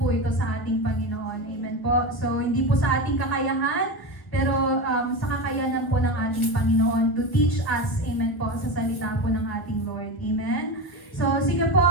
ito sa ating Panginoon, amen po. So, hindi po sa ating kakayahan, pero sa kakayanan po ng ating Panginoon to teach us, amen po, sa salita po ng ating Lord, amen. So, sige po,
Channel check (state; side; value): late; right; 1.2 ms